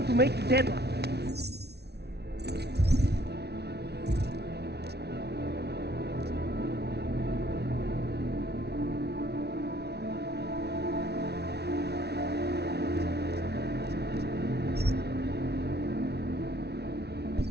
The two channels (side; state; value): left; late; 0.49 ms